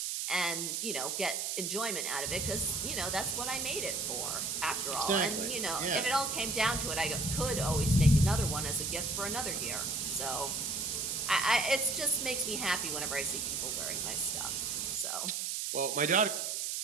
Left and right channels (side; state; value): right; noise; hiss, 1 dB below the sound